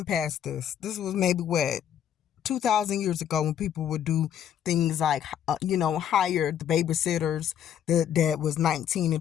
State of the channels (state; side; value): quieter; right; 9.7 dB